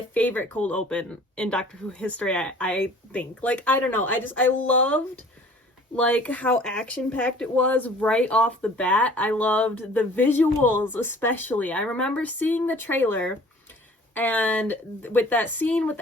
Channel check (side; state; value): both; normal; correlation 0.50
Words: favorite cold open in Doctor Who history, I think. Like, I don't know, I loved, like, how action-packed it was right off the bat. I loved the visuals, especially. I remember seeing the trailer, and with that scene